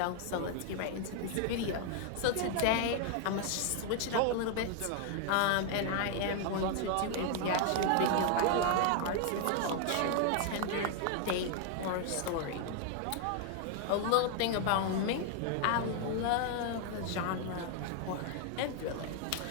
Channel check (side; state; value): both; different; correlation 0.00